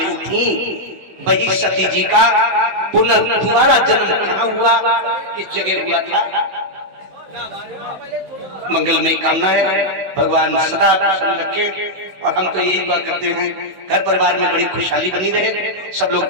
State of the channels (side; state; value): left; late; 16 ms